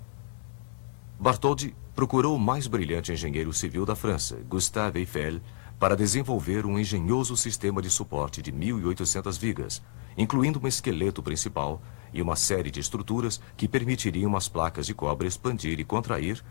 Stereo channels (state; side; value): silent; right; digital silence